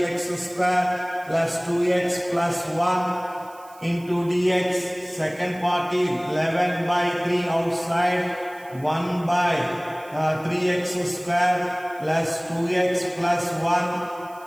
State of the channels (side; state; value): right; noise; hiss, 25 dB below the sound